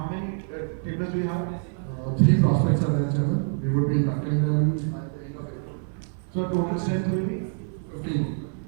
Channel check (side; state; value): left; silent; 61 dB below the other